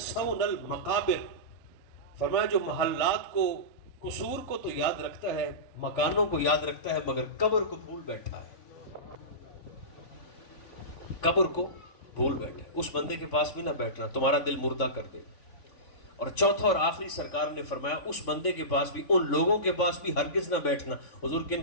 المقابر. فرمایا جو محلات کو قصور کو تو یاد رکھتا ہے مکانوں کو یاد رکھتا ہے مگر قبر کو بھول بیٹھا ہے. قبر کو بھول بیٹھا ہے. اس بندے کے پاس بھی نہ بیٹھنا تمہارا دل مردہ کر دے. اور چوتھا اور آخری سرکار نے فرمایا اس بندے کے پاس بھی ان لوگوں کے پاس بھی ہرگز نہ بیٹھنا. حضور کن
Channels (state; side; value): late; right; 3.5 ms